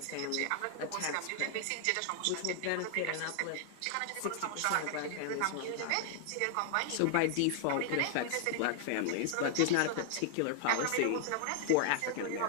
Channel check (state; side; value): different; both; correlation 0.00